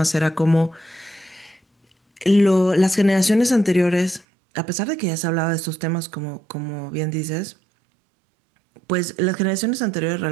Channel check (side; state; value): left; drops out; at 4.2 s